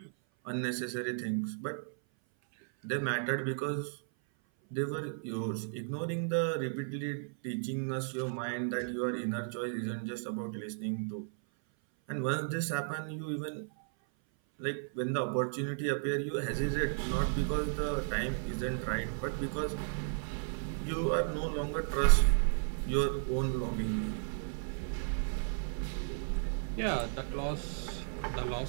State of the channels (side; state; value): left; silent; 55 dB below the other